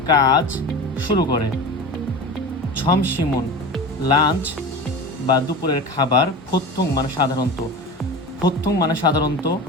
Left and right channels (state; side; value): normal; both; correlation 0.30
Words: কাজ শুরু করে। ছমসিমুন লাঞ্চ বা দুপুরের খাবার। ফোত্থং মানে সাধারণত,